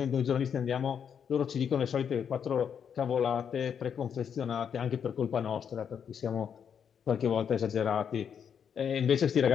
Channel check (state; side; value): quieter; right; 7.7 dB